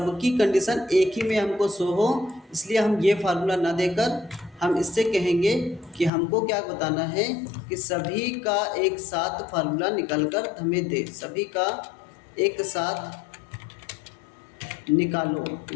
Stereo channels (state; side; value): drops out; right; at 6.1 s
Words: कंडीशन एक ही में हमको शो हो, इसलिए हम ये फार्मूला ना देकर हम इससे कहेंगे कि हमको क्या बताना है कि सभी का एक साथ फार्मूला निकल कर हमें दे। सभी का एक साथ निकालो।